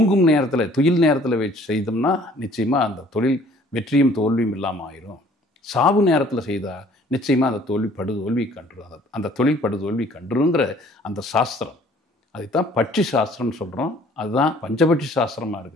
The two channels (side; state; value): both; normal; correlation 0.55